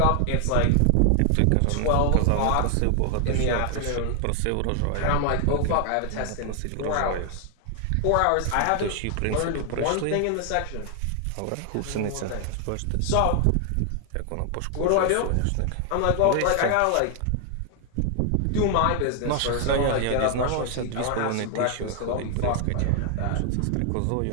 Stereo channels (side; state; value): both; different; correlation 0.00